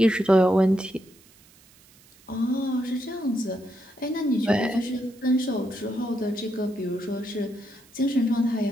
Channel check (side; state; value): right; noise; hiss, 27 dB below the sound